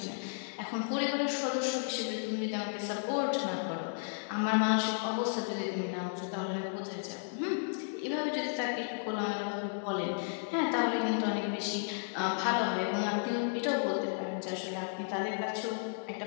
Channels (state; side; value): silent; right; digital silence